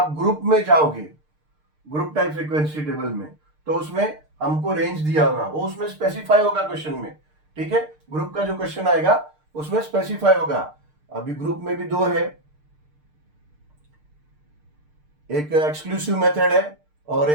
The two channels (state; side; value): late; left; 6.6 ms